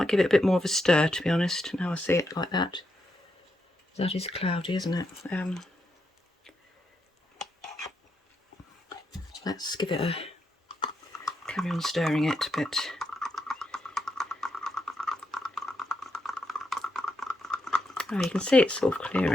give it a bit more of a stir, to be honest, now I see it like that. That is cloudy, isn't it? Let's give it a carry on stirring it a bit. Oh, you can see it's sort of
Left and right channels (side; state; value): both; normal; correlation 0.82